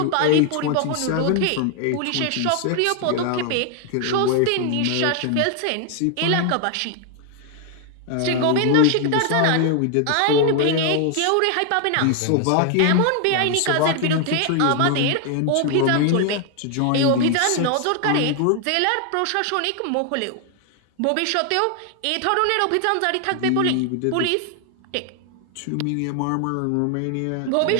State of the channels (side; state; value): both; different; correlation 0.00